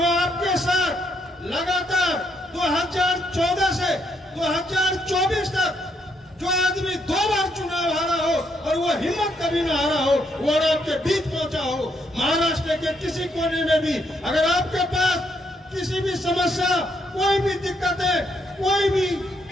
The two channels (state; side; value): normal; both; correlation 0.75